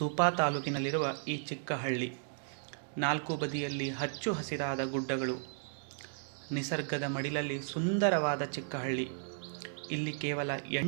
ತಾಲೂಕಿನಲ್ಲಿರುವ ಈ ಚಿಕ್ಕ ಹಳ್ಳಿ. ನಾಲ್ಕು ಬದಿಯಲ್ಲಿ ಹಚ್ಚು ಹಸಿರಾದ ಗುಡ್ಡಗಳು, ನಿಸರ್ಗದ ಮಡಿಲಲ್ಲಿ ಸುಂದರವಾದ ಚಿಕ್ಕ ಹಳ್ಳಿ. ಇಲ್ಲಿ ಕೇವಲ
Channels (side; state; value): left; silent; 55 dB below the other